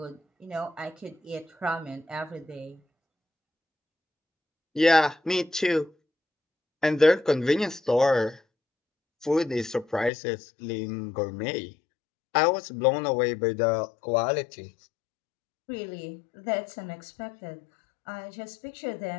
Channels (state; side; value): drops out; right; at 10.1 s